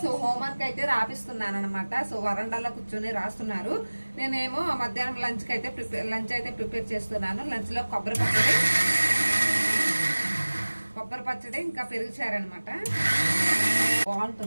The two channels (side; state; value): both; inverted; correlation -1.00